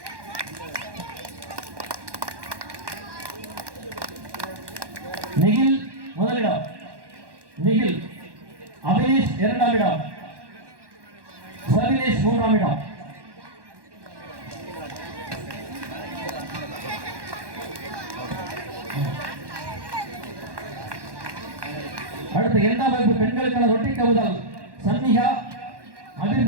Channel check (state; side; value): late; left; 1.1 ms